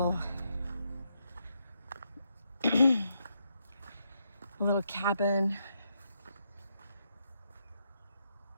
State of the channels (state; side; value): inverted; both; correlation -0.80